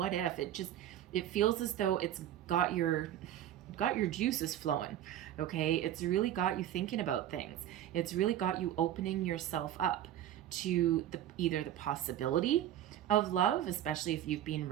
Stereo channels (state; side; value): quieter; left; 11.8 dB